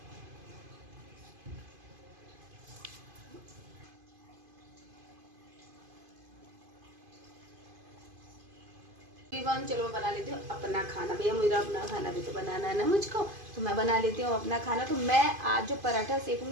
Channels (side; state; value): left; late; 2.5 ms